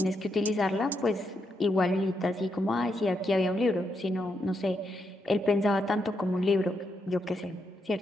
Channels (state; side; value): normal; both; correlation 0.81